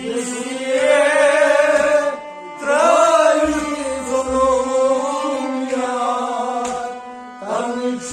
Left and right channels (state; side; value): identical; both; correlation 1.00